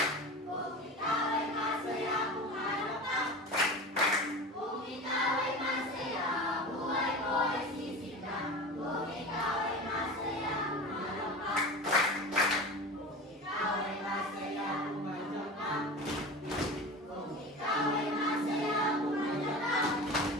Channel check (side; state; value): both; normal; correlation 0.31